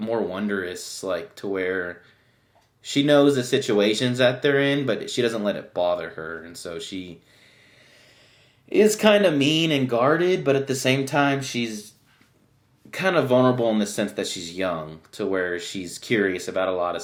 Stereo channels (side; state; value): both; identical; correlation 1.00